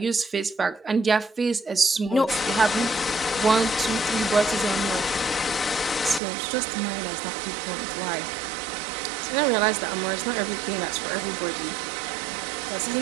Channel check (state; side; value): drops out; left; at 6.2 s